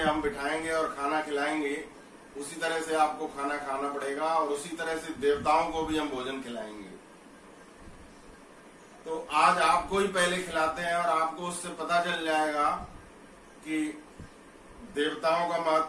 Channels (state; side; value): identical; both; correlation 1.00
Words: बिठाएंगे और खाना खिलाएंगे उसी तरह से आपको खाना खाना पड़ेगा और उसी तरह से देवताओं को भी हम भोजन खिलाएंगे। तो आज आपको ही पहले खिलाते हैं और आपको उससे पता चल जाएगा कि देवताओं का